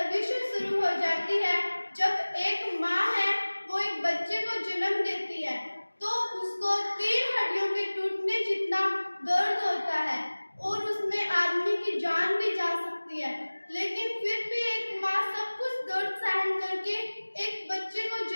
से शुरू हो जाती है जब एक माँ है वो एक बच्चे को जन्म देती है तो उसको 3 हड्डियों के टूटने जितना दर्द होता है और उसमें आदमी की जान भी जा सकती है, लेकिन फिर भी एक माँ सब कुछ दर्द सहन करके एक बच्चे को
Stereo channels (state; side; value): inverted; both; correlation -1.00